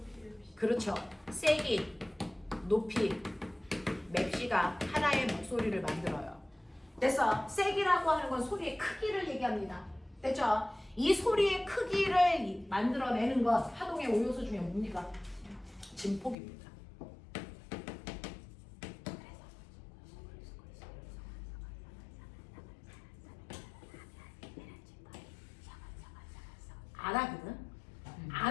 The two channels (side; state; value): right; drops out; at 16.4 s